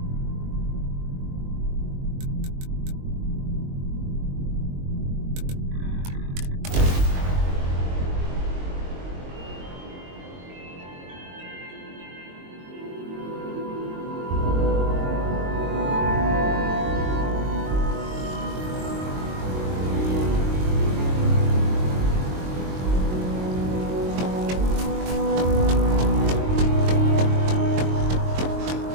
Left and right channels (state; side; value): late; left; 22 ms